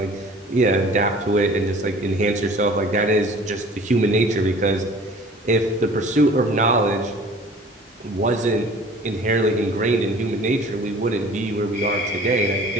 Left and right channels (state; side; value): normal; both; correlation 0.47